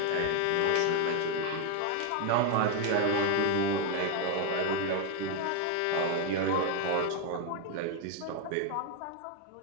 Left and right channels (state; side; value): different; both; correlation 0.01